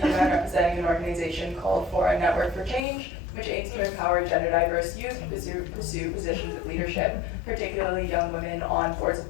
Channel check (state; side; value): drops out; right; at 2.9 s